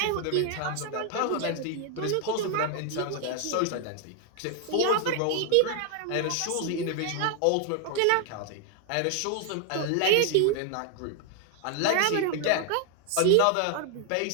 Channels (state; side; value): different; both; correlation 0.00